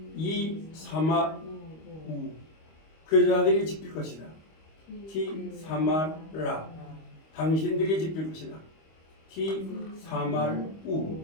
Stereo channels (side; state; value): right; late; 25 ms